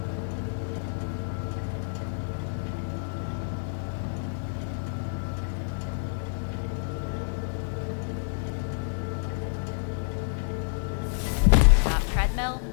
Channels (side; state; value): right; silent; 59 dB below the other